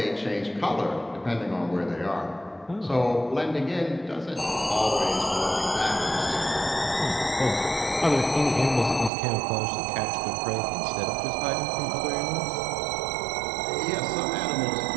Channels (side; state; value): left; drops out; at 9.1 s